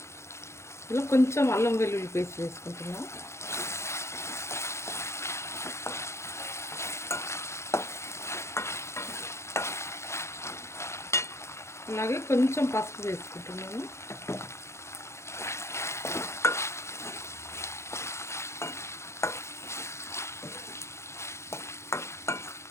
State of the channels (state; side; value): late; right; 0.13 ms